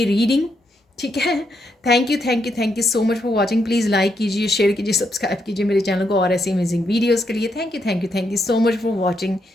रीडिंग, ठीक है। Thank you, thank you, thank you so much for watching. Please like कीजिए, शेयर कीजिए, सब्सक्राइब कीजिए मेरे चैनल को और ऐसी अमेजिंग वीडियोज़ के लिए। Thank you, thank you, thank you so much for watching,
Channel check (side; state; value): both; normal; correlation 0.79